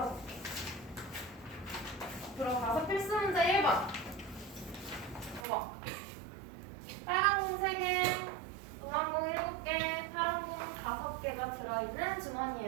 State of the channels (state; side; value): drops out; left; at 5.5 s